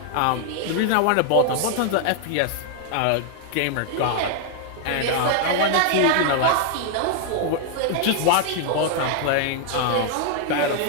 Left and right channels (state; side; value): different; both; correlation 0.00